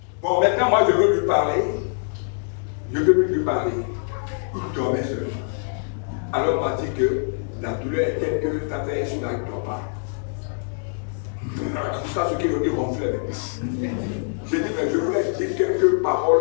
Bon, maintenant, moi, je veux lui parler. Je veux plus lui parler. Il dormait seulement. Alors, on m'a dit que la douleur est telle que ta fait sur la il ne dort pas. Jusqu'à ce qu'il ronflait. J'ai dit, mais je voulais dire quelques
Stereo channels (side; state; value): right; silent; digital silence